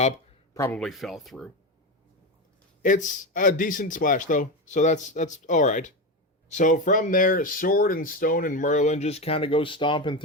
probably fell through. It's a decent splash, though, so that's all right. So from there, Sword and Stone and Merlin just kind of go stomping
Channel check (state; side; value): normal; both; correlation 0.16